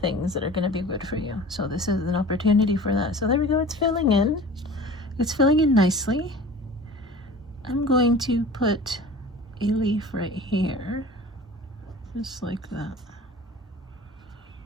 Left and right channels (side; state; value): both; normal; correlation 0.41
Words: that are going to be good for you. So this is an opportunity for that. So there we go. It's filling in. It's filling in nicely. I'm going to put a leaf right here. Just like that.